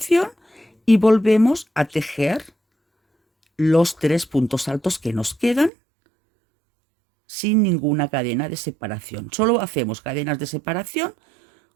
y volvemos a tejer los 3 puntos altos que nos quedan sin ninguna cadena de separación. Solo hacemos cadenas de separación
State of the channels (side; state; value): left; drops out; at 5.7 s